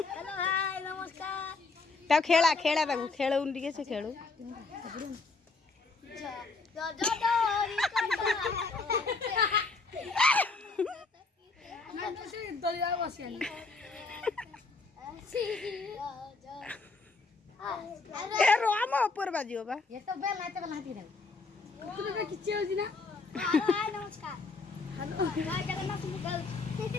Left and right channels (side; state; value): right; quieter; 4.0 dB